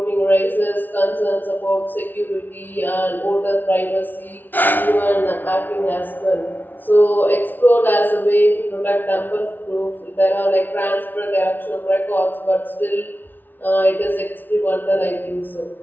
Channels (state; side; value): late; right; 0.088 ms